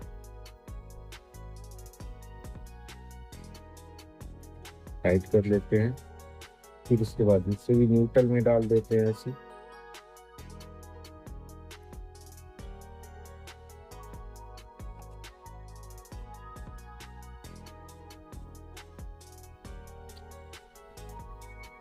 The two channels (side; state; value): both; identical; correlation 1.00